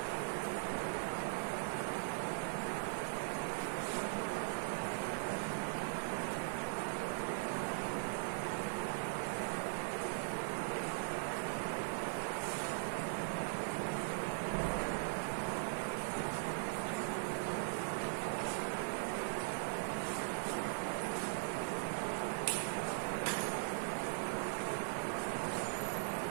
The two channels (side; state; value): left; silent; 51 dB below the other